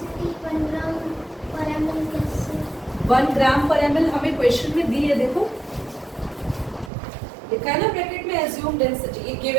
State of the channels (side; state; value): left; drops out; at 6.9 s